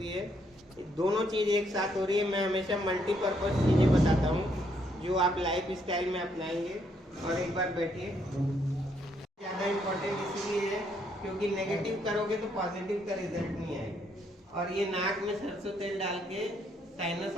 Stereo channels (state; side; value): normal; both; correlation 0.72